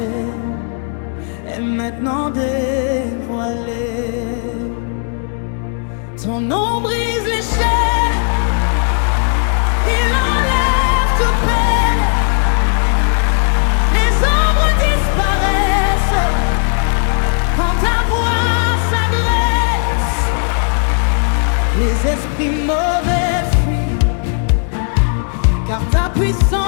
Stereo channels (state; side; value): silent; right; 57 dB below the other